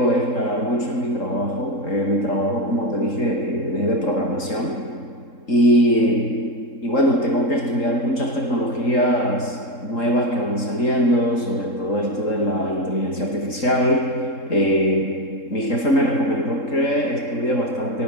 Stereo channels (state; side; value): late; right; 3.7 ms